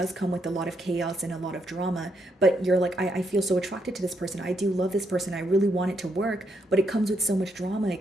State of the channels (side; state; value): both; normal; correlation 0.77